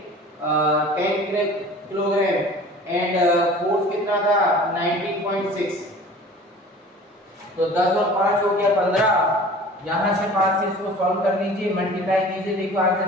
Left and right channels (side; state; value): both; normal; correlation 0.43